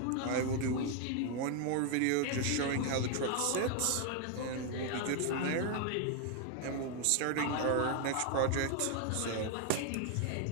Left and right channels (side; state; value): both; different; correlation 0.01